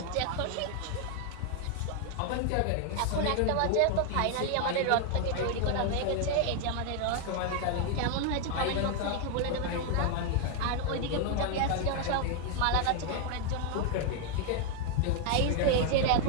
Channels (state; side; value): different; both; correlation 0.01